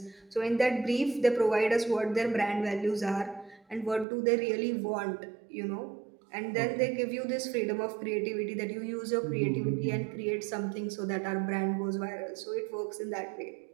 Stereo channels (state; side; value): drops out; left; at 4.0 s